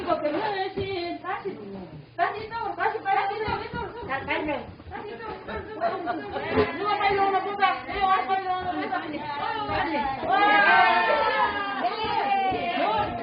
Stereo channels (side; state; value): both; identical; correlation 1.00